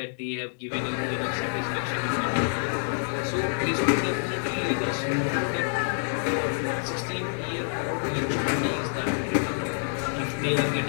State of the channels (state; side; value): silent; right; digital silence